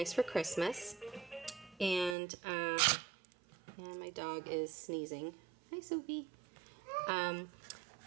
for Christmas. And my dog is sneezing. Hi, Sophie.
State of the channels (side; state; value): left; drops out; at 2.1 s